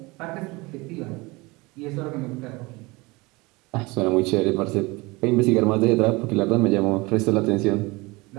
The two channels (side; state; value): left; quieter; 24.0 dB